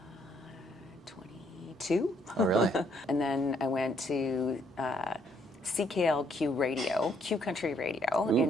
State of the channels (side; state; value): both; normal; correlation 0.68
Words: 22. Oh, really? And then I went to CKLQ Radio, Q Country Radio